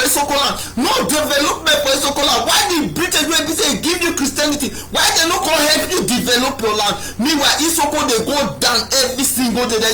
land, no development for Isoko land. Why the British wey be say give you Christianity, why they no come help you develop your land? Meanwhile Isoko dey go down every single day, they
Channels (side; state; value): both; identical; correlation 1.00